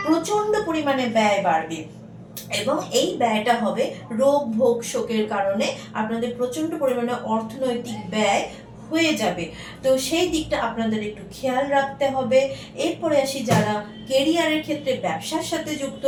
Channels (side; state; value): both; identical; correlation 1.00